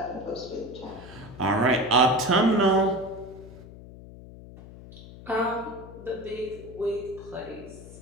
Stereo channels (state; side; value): noise; left; hum, 16 dB below the sound